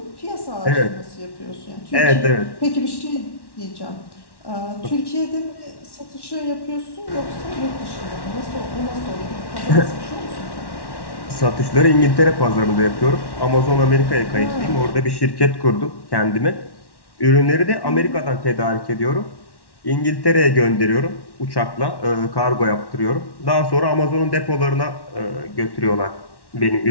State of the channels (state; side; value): late; right; 1.1 ms